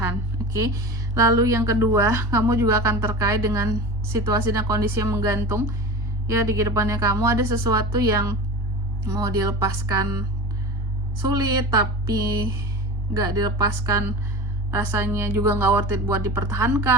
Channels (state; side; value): normal; both; correlation 0.32